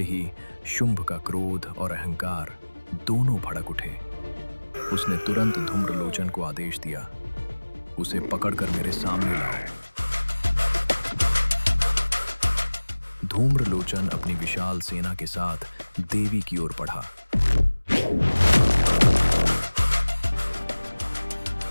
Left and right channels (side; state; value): both; inverted; correlation -1.00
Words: शुंभ का क्रोध और अहंकार दोनों भड़क उठे। उसने तुरंत धूम्रलोचन को आदेश दिया, उसे पकड़कर मेरे सामने लाओ। धूम्रलोचन अपनी विशाल सेना के साथ देवी की ओर बढ़ा।